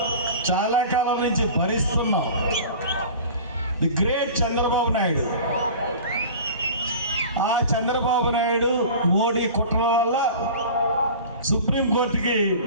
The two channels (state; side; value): inverted; both; correlation -0.39